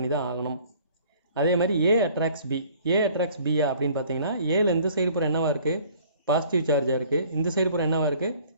தான் ஆகணும். அதே மாதிரி ஏ அட்ராக்ட்ஸ் பி. ஏ அட்ராக்ட்ஸ் பியா அப்படின்னு பார்த்தீங்கன்னா, ஏல இந்த சைடு பூரா என்னவா இருக்குது? பாசிட்டிவ் சார்ஜாக இருக்குது. இந்த சைடு பூரா என்னவா இருக்குது?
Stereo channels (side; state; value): both; inverted; correlation -0.54